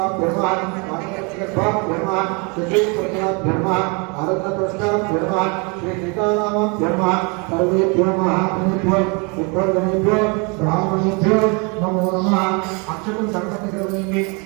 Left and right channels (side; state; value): left; quieter; 31.4 dB